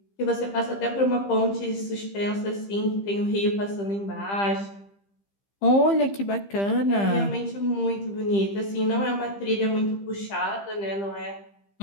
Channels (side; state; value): right; late; 15 ms